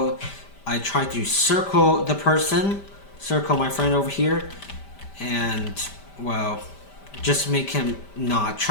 I try to circle the person, circle my friend over here, and, well, just make him not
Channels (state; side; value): late; right; 5.1 ms